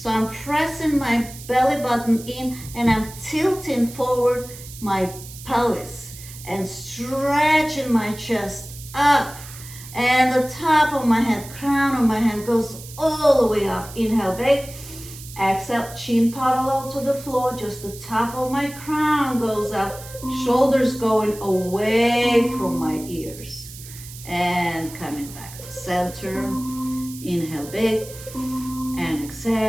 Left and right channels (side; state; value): right; noise; hiss, 15 dB below the sound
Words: I'm pressing my belly button in, and I'm tilting forward my pelvis and stretching my chest up. And the top of my head, crown of my head goes all the way up. Inhale, big. Exhale, chin parallel to the floor. Just the top of my crown goes up. Shoulders going away from my ears. And coming back to center. Inhale, big. And